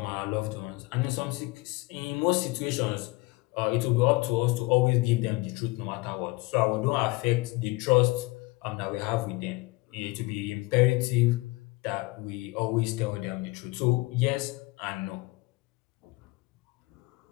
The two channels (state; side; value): quieter; right; 23.0 dB